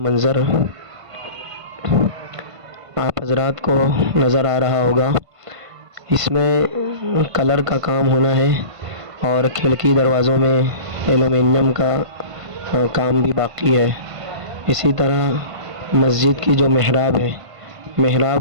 منظر آپ حضرات کو نظر آ رہا ہوگا، اس میں کلر کا کام ہونا ہے، اور کھڑکی دروازوں میں ایلومینیم کا کام بھی باقی ہے۔ اسی طرح مسجد کی جو محراب ہے،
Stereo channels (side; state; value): left; late; 1.5 ms